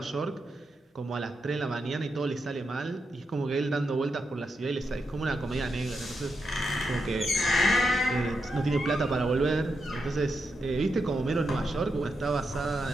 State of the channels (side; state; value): both; normal; correlation 0.85